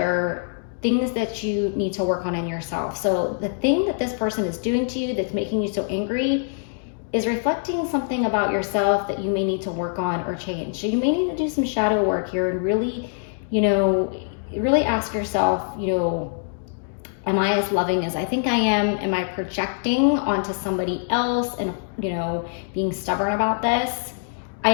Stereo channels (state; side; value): silent; right; digital silence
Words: things that you need to work on in yourself. So the thing that this person is doing to you that's making you so angry is reflecting something about yourself that you may need to work on or change. So you may need to do some shadow work here and really, really ask yourself, am I as loving as I think I am? Am I projecting onto somebody else and, being stubborn about this? I